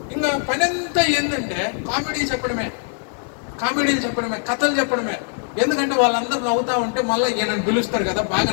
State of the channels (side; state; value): right; silent; 57 dB below the other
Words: ఇంకా పని అంతా ఏంటంటే కామెడీలు చెప్పడమే, కథలు చెప్పడమే. ఎందుకంటే వాళ్ళందరూ నవ్వుతా ఉంటే మళ్ళీ ఈయనను పిలుస్తారు కదా, బాగా